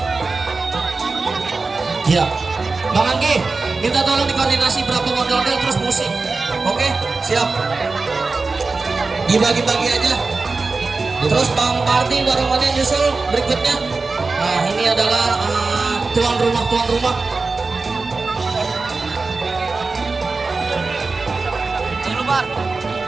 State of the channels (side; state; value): left; quieter; 3.9 dB